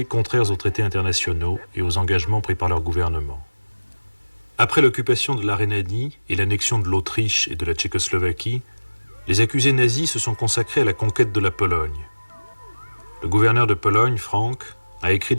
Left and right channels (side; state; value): both; inverted; correlation -1.00